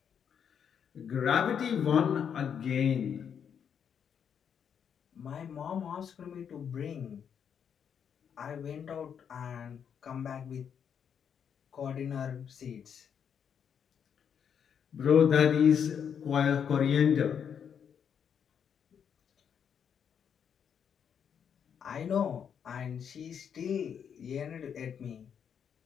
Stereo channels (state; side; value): quieter; right; 7.8 dB